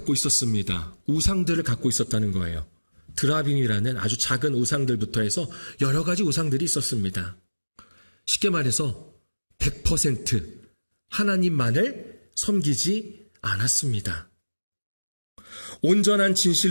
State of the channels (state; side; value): inverted; both; correlation -1.00